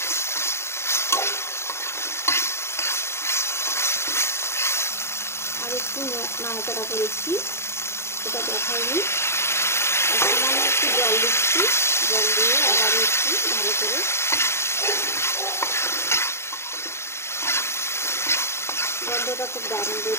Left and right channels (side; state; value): right; late; 0.13 ms